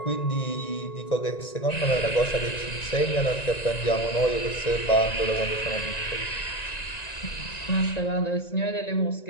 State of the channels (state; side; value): late; right; 1.9 ms